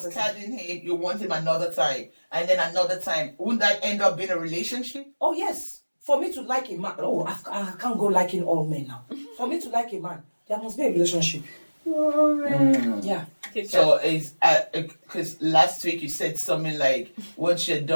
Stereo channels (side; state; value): both; inverted; correlation -1.00